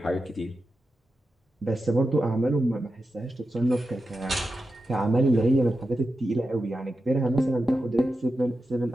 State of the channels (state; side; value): normal; both; correlation 0.90